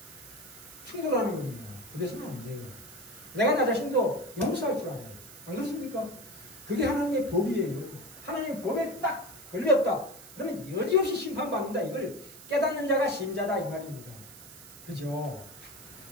충돌하는 겁니다. 그래서는 안 돼요. 내가 나 자신도 용서할 줄 알아요. 안 그렇습니까? 그게 하나님의 법이에요. 하나님의 법에 딱 걸렸다. 그러면 여지없이 심판받는다. 이걸 깨닫는 자가 신자다 이 말입니다. 그죠?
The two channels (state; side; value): noise; right; hiss, 18 dB below the sound